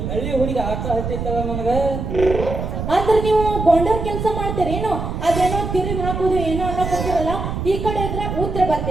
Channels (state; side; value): noise; right; rumble, 4 dB below the sound